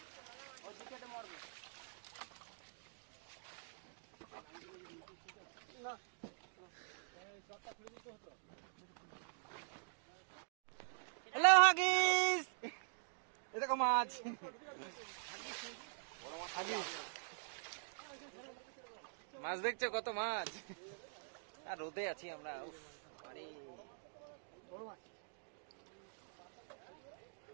হ্যালো হাগিস, এ দেখো মাছ। মাছ দেখছো কত মাছ? আর রোদে আছি আমরা। আরে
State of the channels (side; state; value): left; silent; digital silence